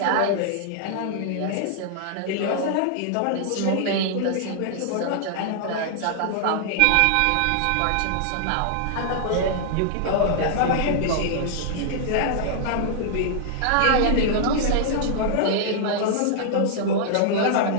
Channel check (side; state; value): both; different; correlation -0.01